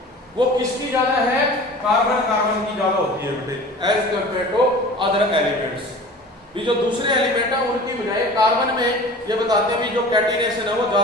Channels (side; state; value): both; normal; correlation 0.40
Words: वो किसकी ज्यादा है, कार्बन कार्बन की ज्यादा होती है बेटे, as compare to other elements. भी जो दूसरे एलिमेंट है उनकी बजाय कार्बन में ये बताते हैं भी जो कैटिनेशन है वो